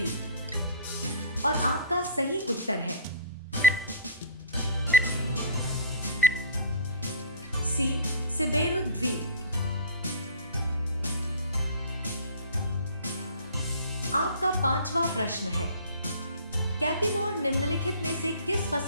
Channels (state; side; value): inverted; both; correlation -0.40